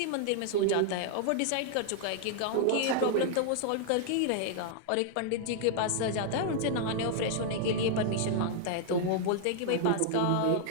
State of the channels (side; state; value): both; different; correlation -0.01